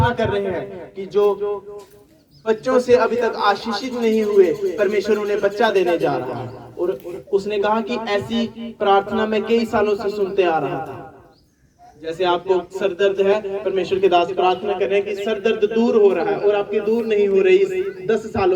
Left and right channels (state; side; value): identical; both; correlation 1.00